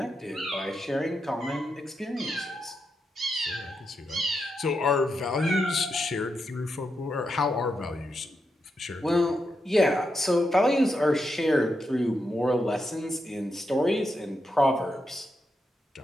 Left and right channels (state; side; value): normal; both; correlation 0.84